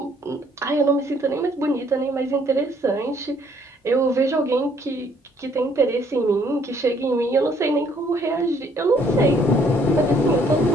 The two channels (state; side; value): normal; both; correlation 0.64